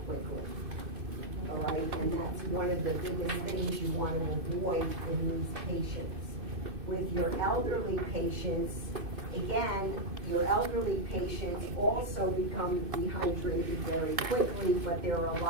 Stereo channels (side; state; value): left; late; 2.5 ms